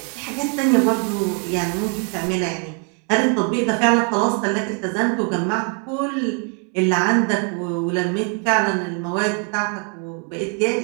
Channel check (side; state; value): left; quieter; 38.9 dB